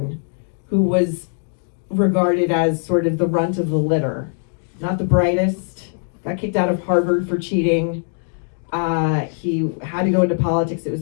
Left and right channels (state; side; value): silent; right; digital silence